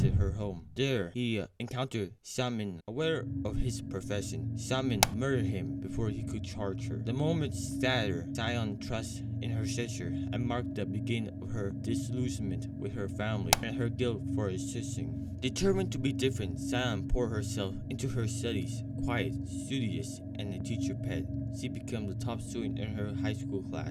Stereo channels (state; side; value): identical; both; correlation 1.00